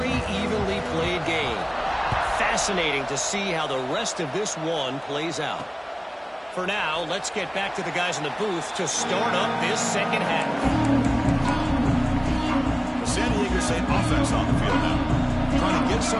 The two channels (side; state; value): both; identical; correlation 1.00